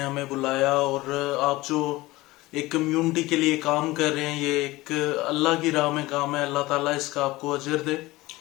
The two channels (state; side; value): quieter; right; 19.6 dB